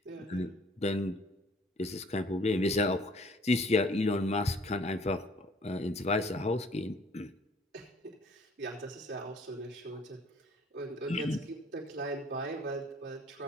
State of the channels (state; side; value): normal; both; correlation 0.56